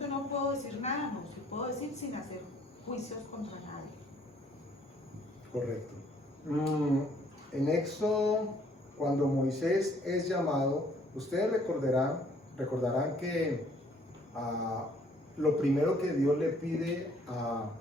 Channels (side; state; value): both; normal; correlation 0.62